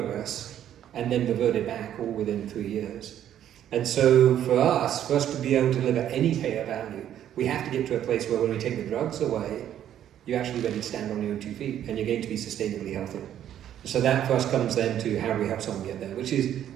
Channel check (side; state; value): left; quieter; 10.8 dB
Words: and then reverted back all within 3 years. And so for us to be able to deliver any payer value, we have to get to a place where when we take the drugs away, you're actually ready to stand on your own 2 feet, and you're going to be sustainably healthy. So that for us comes then to how do we help someone get there, which is